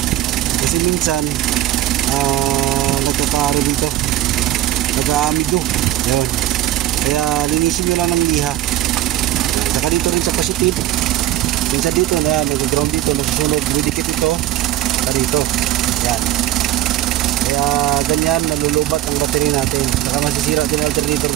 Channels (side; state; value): left; quieter; 13.6 dB